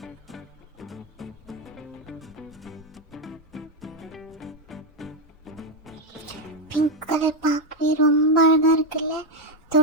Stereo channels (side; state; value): both; normal; correlation 0.06